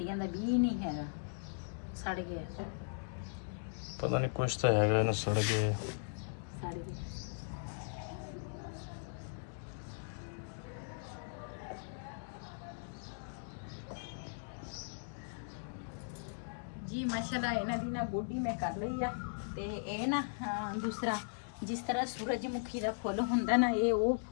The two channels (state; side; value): silent; right; digital silence